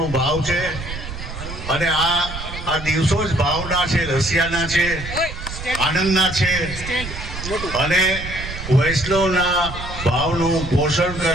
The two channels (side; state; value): right; noise; rumble, 9 dB below the sound